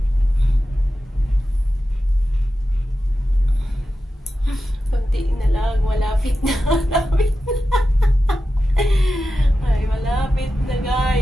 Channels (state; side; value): normal; both; correlation 0.92